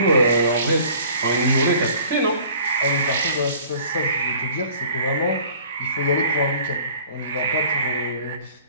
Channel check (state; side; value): inverted; both; correlation -0.51